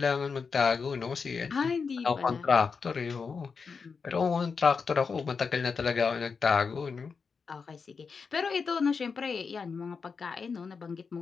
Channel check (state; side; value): quieter; right; 5.3 dB